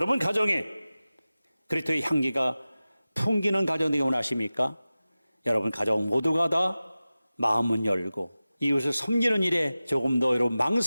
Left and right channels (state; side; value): inverted; both; correlation -0.96